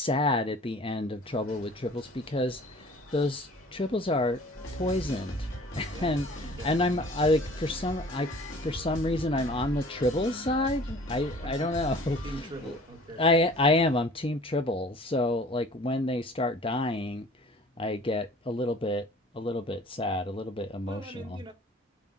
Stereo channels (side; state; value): both; normal; correlation 0.49